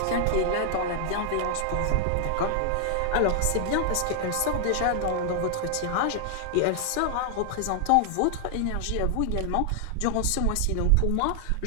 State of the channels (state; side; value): different; both; correlation 0.00